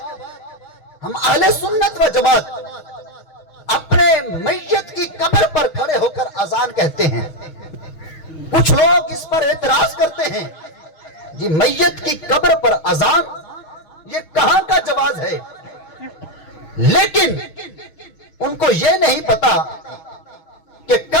ہم اہل سنت و جماعت اپنے میت کی قبر پر کھڑے ہو کر اذان کہتے ہیں۔ کچھ لوگ اس پر اعتراض کرتے ہیں، جی میت کی قبر پر اذان یہ کہاں کا جواز ہے؟ لیکن ان کو یہ نہیں پتا کہ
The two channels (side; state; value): right; late; 6.3 ms